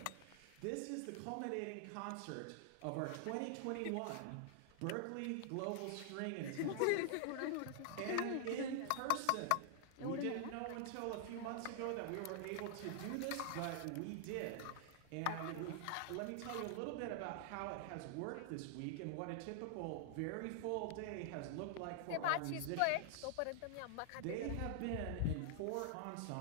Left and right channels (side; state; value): both; different; correlation 0.00